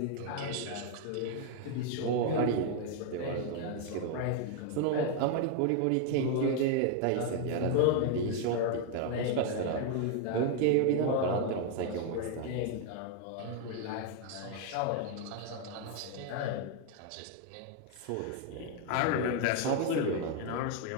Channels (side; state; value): both; different; correlation 0.01